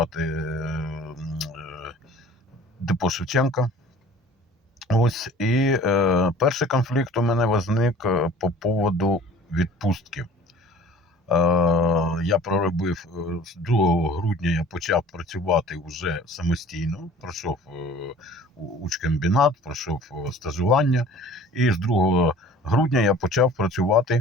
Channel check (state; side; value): normal; both; correlation 0.47